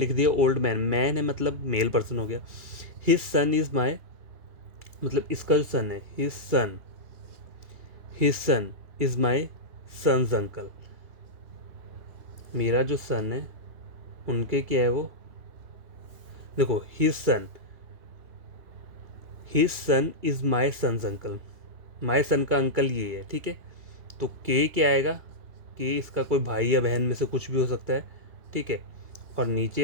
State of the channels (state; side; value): late; left; 2.3 ms